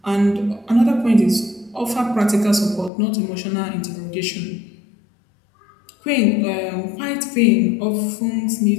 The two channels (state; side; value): drops out; right; at 2.9 s